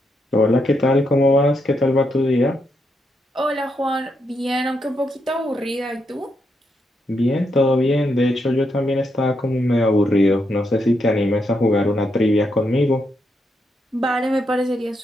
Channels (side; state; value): both; normal; correlation 0.81